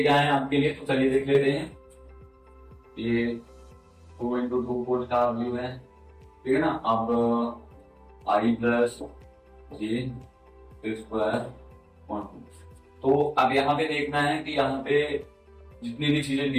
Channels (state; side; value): identical; both; correlation 1.00